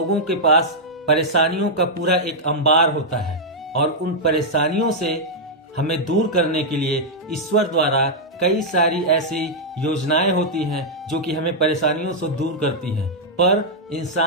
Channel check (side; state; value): both; normal; correlation -0.06